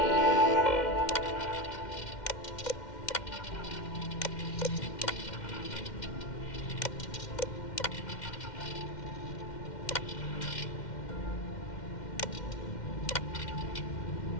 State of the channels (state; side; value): late; right; 2.1 ms